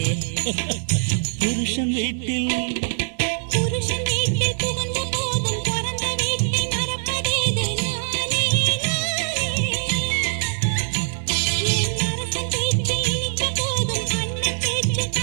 புருஷன் வீட்டில் புகுந்த போதும் பிறந்த வீட்டை மறப்பதேது நானே நானே. என் அரசன் பேச்சு இனித்த போதும் அண்ணன் பேச்சு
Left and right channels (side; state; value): left; silent; digital silence